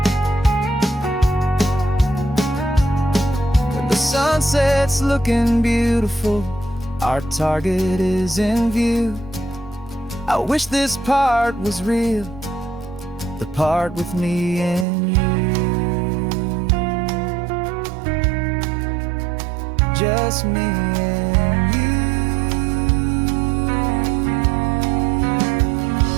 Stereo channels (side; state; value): left; drops out; at 14.9 s